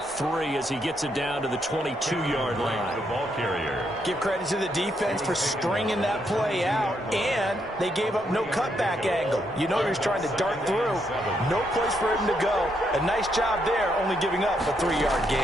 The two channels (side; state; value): both; normal; correlation 0.77